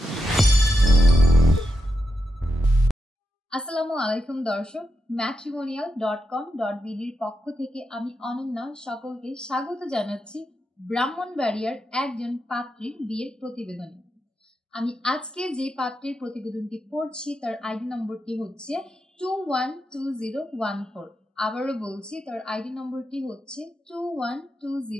আসসালামু আলাইকুম দর্শক, matrimonial.com.bd এর পক্ষ থেকে আমি অনন্যা সকলকে স্বাগত জানাচ্ছি ব্রাহ্মণবাড়িয়ার একজন পাত্রীর বিয়ের প্রতিবেদনে। আমি আজকে যে পাত্রের প্রতিবেদনটি পড়ছি তার আইডি নম্বরটি হচ্ছে 212014। আবারও বলছি, তার আইডি নম্বরটি হচ্ছে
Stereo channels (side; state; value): both; normal; correlation 0.86